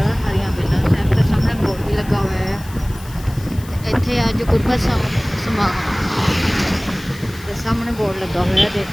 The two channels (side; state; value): left; noise; hiss, 20 dB below the sound